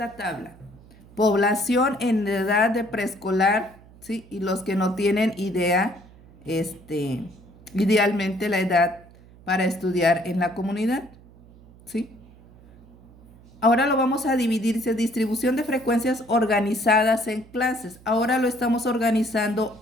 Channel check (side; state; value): right; noise; hum, 24 dB below the sound